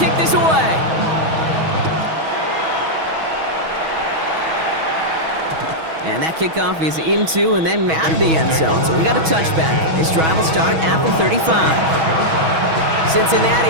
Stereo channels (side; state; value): left; late; 6.2 ms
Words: kick this away. And that kickoff is into and then out of the end zone. So we got a touchback. This drive will start at the 35.